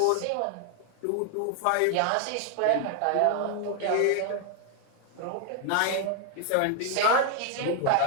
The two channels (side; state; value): both; different; correlation 0.00